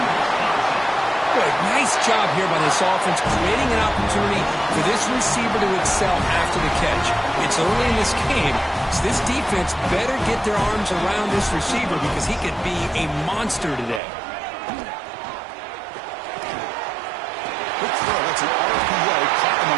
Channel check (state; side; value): drops out; left; at 14.0 s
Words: Good. Nice job here by this offense, creating an opportunity for this receiver to excel after the catch. It's early in this game, so this defense better get their arms around this receiver because he could be a monster today. Quick throw. It's an RPO caught on the